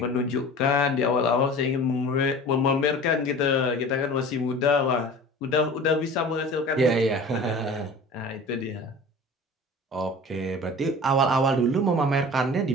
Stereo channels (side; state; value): both; normal; correlation 0.40